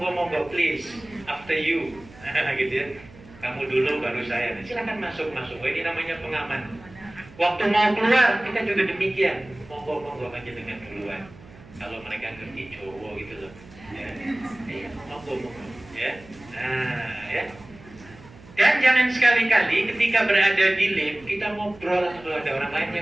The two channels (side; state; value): right; noise; hum, 21 dB below the sound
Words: please, after you, gitu, ya. Kamu dulu baru saya. Silakan masuk. Oh, ini namanya pengaman. Waktu mau keluar kita juga demikian. Monggo aja dengan duluan. Kalau mereka ngerti cowok gitu loh. Ya. Iya, monggo. Ya. Nah, ya. Dan jangan sekali-kali ketika berada di lift kita ngobrol kalau ada orang lain, ya,